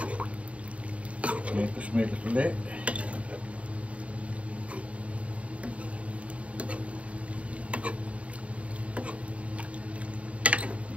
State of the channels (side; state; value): left; late; 0.065 ms